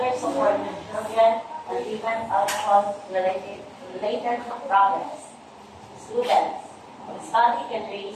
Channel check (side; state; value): both; identical; correlation 1.00